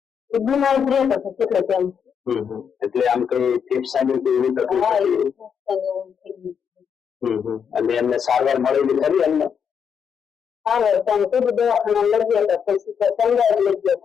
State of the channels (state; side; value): quieter; right; 7.2 dB